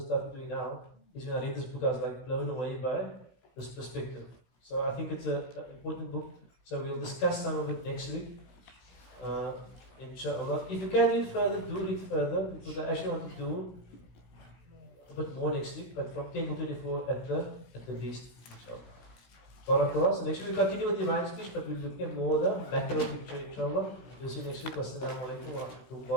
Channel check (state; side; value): late; right; 16 ms